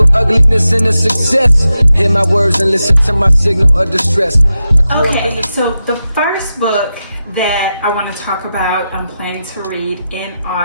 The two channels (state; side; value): inverted; both; correlation -0.90